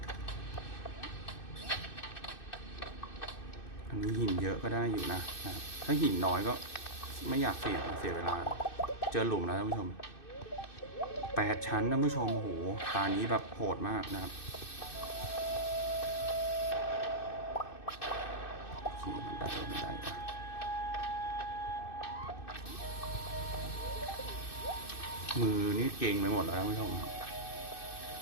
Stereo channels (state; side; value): late; right; 2.6 ms